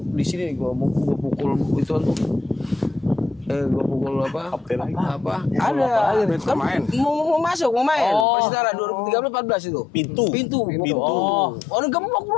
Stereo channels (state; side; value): drops out; right; at 8.2 s